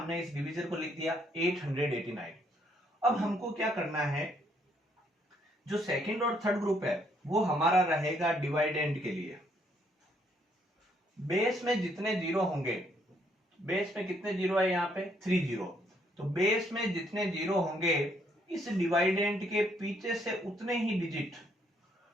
इस डिवीजर को लिख दिया 889। अब हमको क्या करना है, जो सेकंड और थर्ड ग्रुप है वो हमारा रहेगा डिवाइडेंड के लिए। बेस में जितने जीरो होंगे, बेस में कितने जीरो है यहाँ पे 3 जीरो, तो बेस में जितने जीरो होंगे इस डिवाइडेंड के पीछे से उतने ही डिजिट,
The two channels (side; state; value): both; normal; correlation 0.69